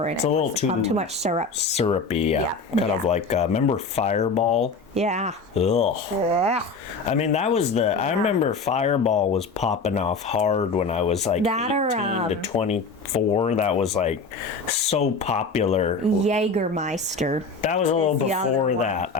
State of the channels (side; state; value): right; quieter; 4.1 dB